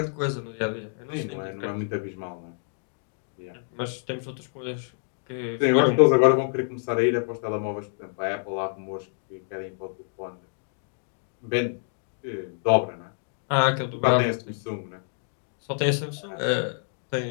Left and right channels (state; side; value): silent; right; digital silence